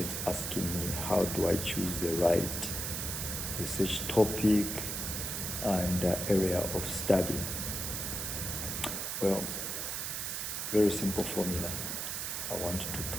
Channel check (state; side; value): noise; right; hiss, 3 dB below the sound